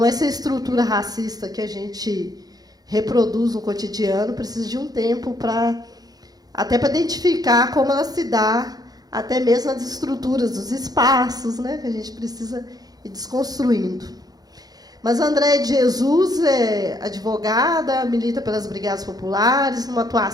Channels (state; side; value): late; left; 0.19 ms